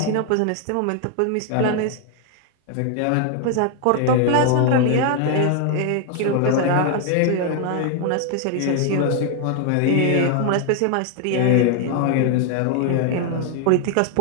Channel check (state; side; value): different; both; correlation 0.00